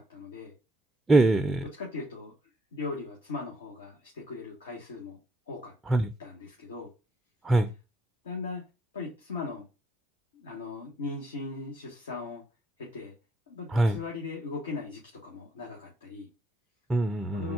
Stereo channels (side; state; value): both; normal; correlation 0.75